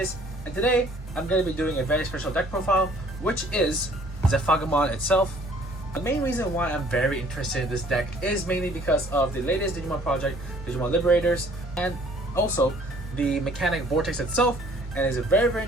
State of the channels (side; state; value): both; normal; correlation 0.57